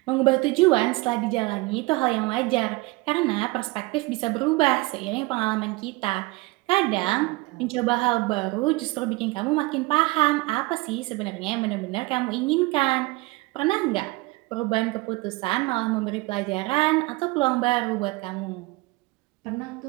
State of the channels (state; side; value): quieter; left; 22.5 dB